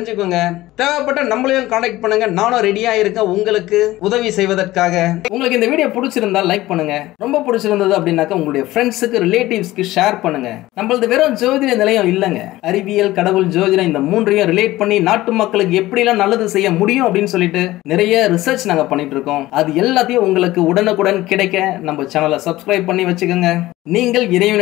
தேவைப்பட்ட நம்மளையும் கான்டாக்ட் பண்ணுங்க. நானும் ரெடியா இருக்கேன் உங்களுக்கு உதவி செய்வதற்காக. உங்களுக்கு இந்த வீடியோ பிடிச்சிருந்தா லைக் பண்ணுங்க. ரொம்ப பிடிச்சிருந்தது அப்படின்னாக்கா உங்களுடைய ஃப்ரெண்ட்ஸுக்கு, ரிலேட்டிவ்ஸ்க்கு ஷேர் பண்ணுங்க. நம்மளது வெறும் ஜோதிட நிலையம் இல்லங்க. அறிவியல், கடவுள், ஜோதிடம் இந்த மூன்றையும் ரிலேட் பண்ணி நாட்டு மக்களுக்கு எப்படி எல்லாம் நல்லது செய்ய முடியும் அப்படின்னு சொல்லிட்டு நிறைய ரிசர்ச் நாங்க பண்ணிட்டு இருக்கோம். அது எல்லாத்தையும் உங்களுக்கு உடனுக்குடன் கிடைக்க நம்ம சேனலை சப்ஸ்கிரைப் பண்ணி வச்சுக்கோங்க. நீங்கள்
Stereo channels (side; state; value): right; quieter; 17.0 dB